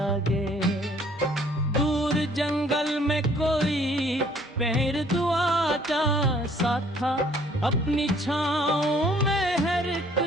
दूर जंगल में कोई पैर दुआ जा सा था, अपनी छाँव में हर एक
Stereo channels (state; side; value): normal; both; correlation 0.60